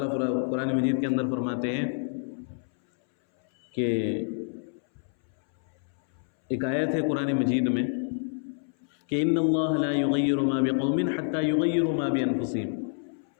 قرآن مجید کے اندر فرماتے ہیں کہ ایک آیت ہے قرآن مجید میں کہ ان اللہ لا یغیر ما بقوم حتی یغیروا ما بانفسہم،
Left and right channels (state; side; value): silent; right; 60 dB below the other